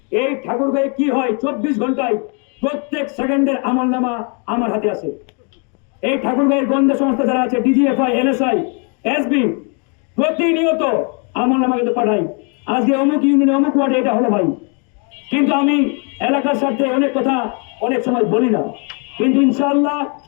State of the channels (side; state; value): right; quieter; 37.0 dB